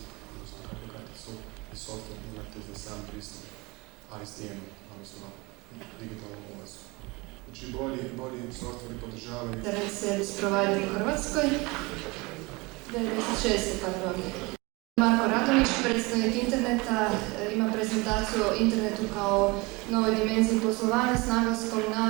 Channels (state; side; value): quieter; left; 25.2 dB